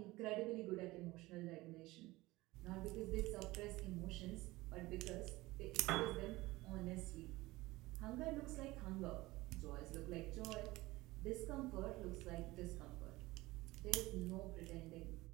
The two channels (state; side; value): quieter; left; 19.7 dB